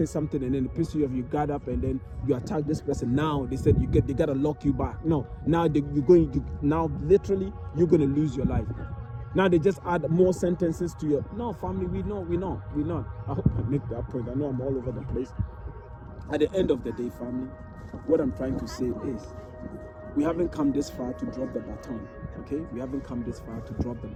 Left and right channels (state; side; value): identical; both; correlation 1.00